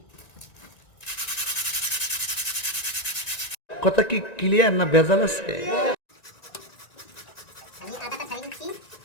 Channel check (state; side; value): late; right; 1.9 ms